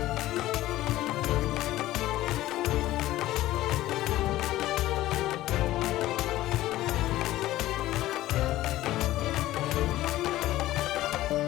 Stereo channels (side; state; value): right; quieter; 15.6 dB